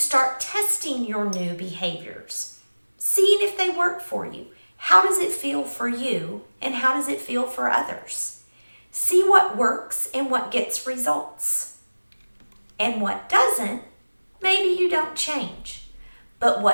testing your new behaviors, seeing if they work for you. How does it feel for you and how does it feel for others? See what works and what gets results. And what doesn't, maybe you don't change. But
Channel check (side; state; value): both; inverted; correlation -1.00